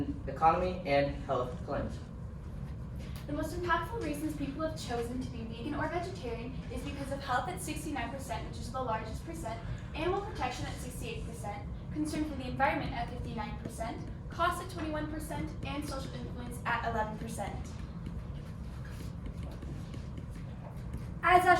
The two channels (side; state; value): both; identical; correlation 1.00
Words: economy, and health claims. The most impactful reasons people have chosen to be vegan or vegetarian is because of health at 69%, which is the largest percent, animal protection at 68%, concern for the environment at 59%, cost at 21%, and social influence at 11%. As